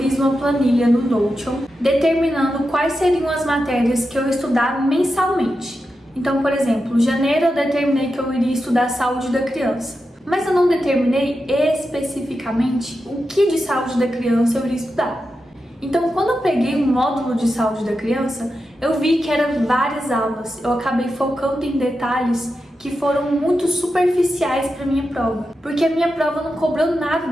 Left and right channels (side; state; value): both; normal; correlation 0.89